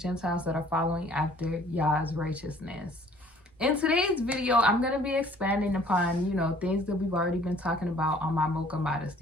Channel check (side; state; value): both; normal; correlation 0.55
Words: that are following after Yah's righteousness. In today's video, I'm going to be expanding upon, things that we've already been talking about on my Mocha